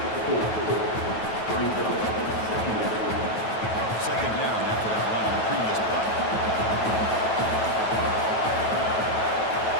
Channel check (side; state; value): right; late; 9.2 ms